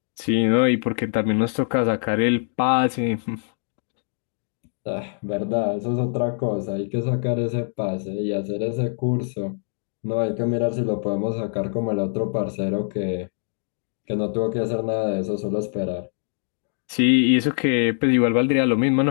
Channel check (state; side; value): silent; right; 63 dB below the other